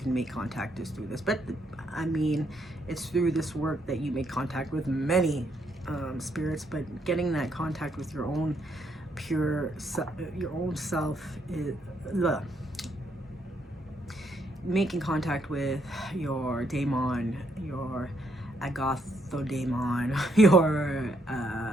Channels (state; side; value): normal; both; correlation 0.74